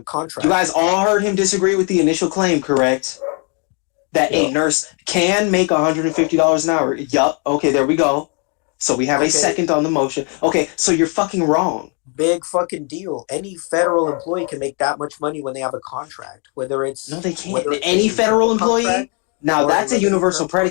contract. guys all heard him disagree with the initial claim, correct? That Yeah. a nurse can make $150 an hour. Yup. Okay, there we go. So we have a Okay, second on the motion. Okay, so you're fucking wrong. big fucking deal. Any federal employee can make that much money when they have a contract, whether No, it's they can't. whether it's Any a simple federal employee? contract Now or a that's a limited universal term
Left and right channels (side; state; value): right; quieter; 36.5 dB